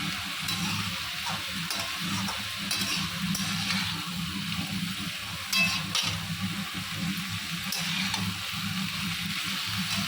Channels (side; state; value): both; identical; correlation 1.00